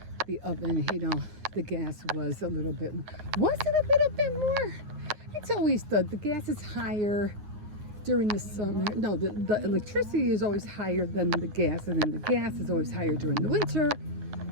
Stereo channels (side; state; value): left; late; 9.6 ms